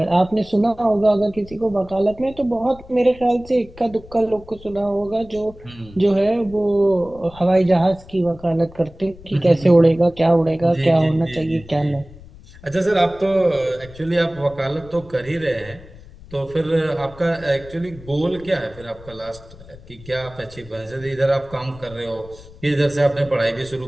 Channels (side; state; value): left; noise; rumble, 20 dB below the sound